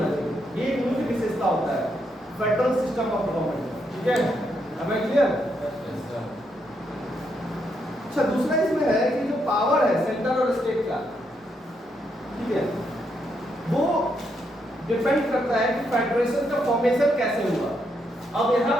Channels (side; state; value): both; normal; correlation 0.78